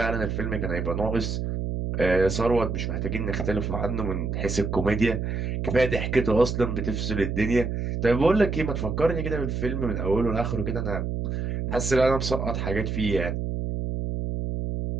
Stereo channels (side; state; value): right; noise; hum, 2 dB below the sound